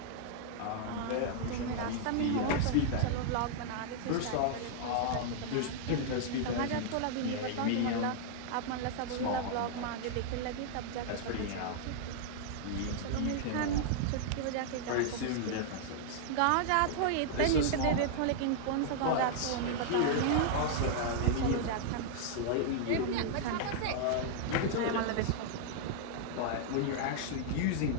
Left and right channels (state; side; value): different; both; correlation -0.01